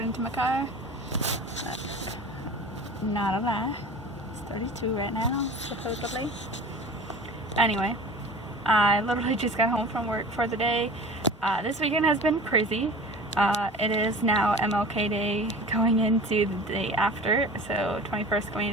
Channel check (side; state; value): both; normal; correlation 0.38